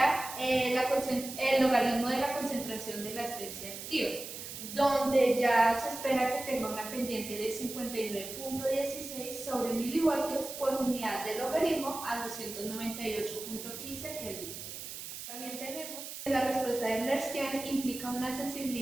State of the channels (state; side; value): noise; right; hiss, 9 dB below the sound